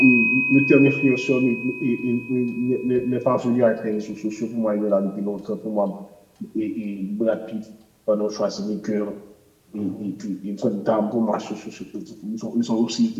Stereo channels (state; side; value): identical; both; correlation 1.00